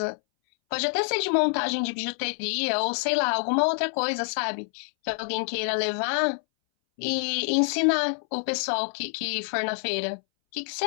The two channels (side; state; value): right; silent; 60 dB below the other